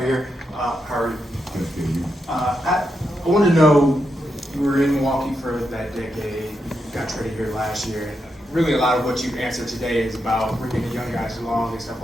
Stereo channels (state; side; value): normal; both; correlation 0.84